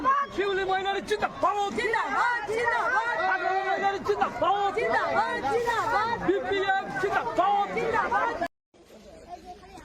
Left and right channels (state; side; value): identical; both; correlation 1.00